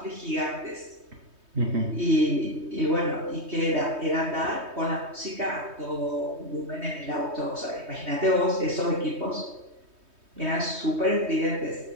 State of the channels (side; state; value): left; late; 3.2 ms